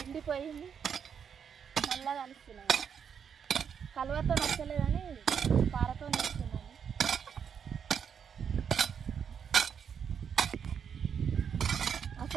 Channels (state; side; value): quieter; left; 7.4 dB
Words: ఎండిపోయింది మళ్ళీ కలుస్తున్నాను కలువతో నచ్చలేదని పారతో నేస్తున్నాను